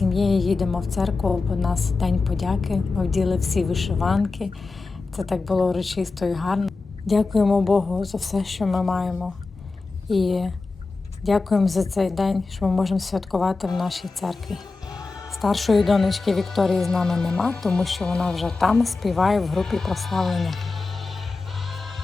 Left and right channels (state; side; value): quieter; right; 3.9 dB